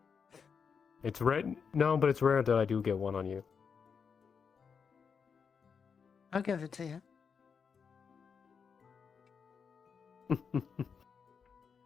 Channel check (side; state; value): right; quieter; 6.2 dB